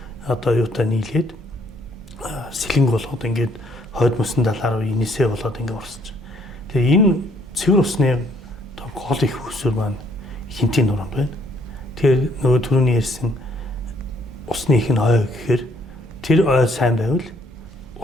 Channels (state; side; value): normal; both; correlation 0.66